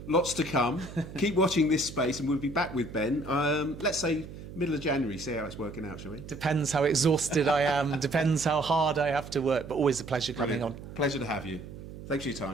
lots to come. Keep watching this space and we'll be back with Ben. Let's say middle of January, see how it's working out, shall we? Depends how exhausted I am, depends how hard I have to work, but always a pleasure coming on. Pleasure to have you. Thanks for your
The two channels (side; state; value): right; noise; hum, 13 dB below the sound